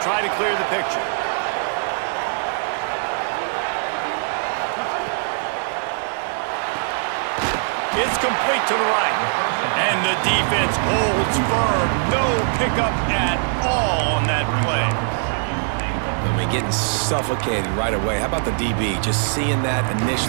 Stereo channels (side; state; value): left; silent; digital silence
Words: try to clear the picture. It's complete to the right. And the defense holds firm. No pickup at all on that play. I mean, getting suffocated right away. How about the DB? Just seeing that